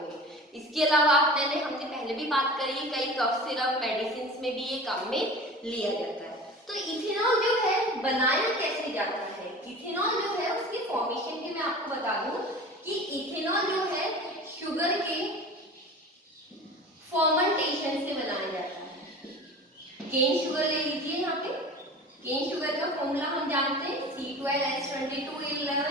इसके अलावा हमने पहले भी बात करी, कई कफ सिरप, मेडिसिन में भी ये काम में लिया जाता है। तो इथेनॉल जो है बनाया कैसे जाता है? इथेनॉल जो है उसकी फॉर्मेशन की मैं आपको बता दूं कि इथेनॉल जो है शुगर के फर्मेंटेशन से बनाया जाता है। केन शुगर ले लीजिए। यहाँ पे केन शुगर का फॉर्मूला हम जानते हैं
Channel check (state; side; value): normal; both; correlation 0.37